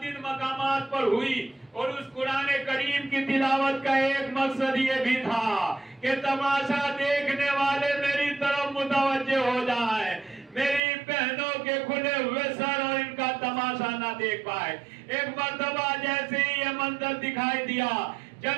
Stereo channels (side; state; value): left; drops out; at 10.8 s